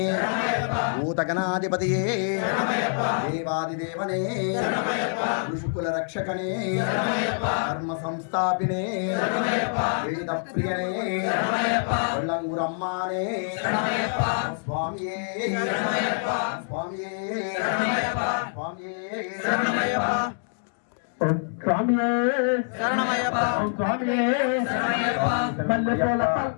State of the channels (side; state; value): right; silent; digital silence